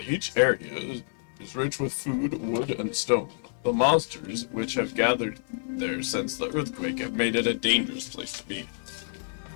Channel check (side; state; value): right; silent; 59 dB below the other